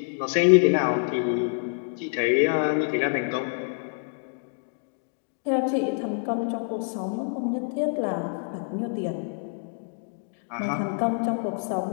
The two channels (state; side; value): silent; right; 60 dB below the other